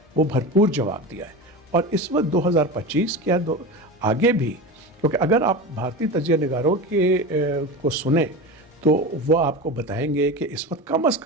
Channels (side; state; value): both; normal; correlation 0.26